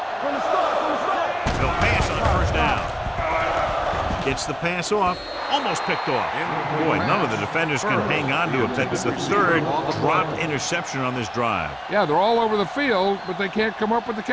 From the start, from the start. They'll pass on first down. Gets the pass off. Almost picked off. Boy, none of the defenders can hang on to it. That's the 3rd dropped interception on this drive. Yeah, they're all over the field, but they can't come up with the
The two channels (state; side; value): identical; both; correlation 1.00